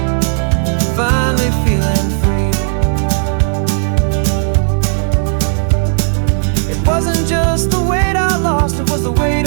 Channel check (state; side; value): silent; left; digital silence